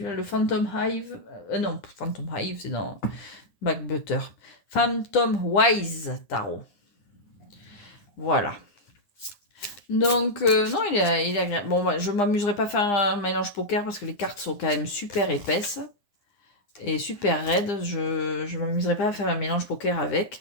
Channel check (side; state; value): right; late; 9.9 ms